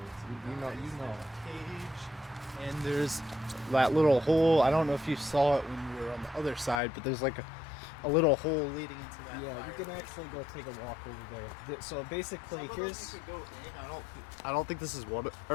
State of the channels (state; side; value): drops out; right; at 6.8 s